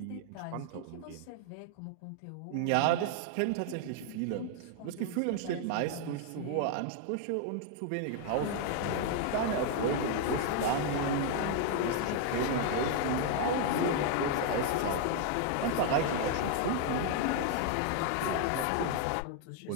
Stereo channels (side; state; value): both; different; correlation 0.00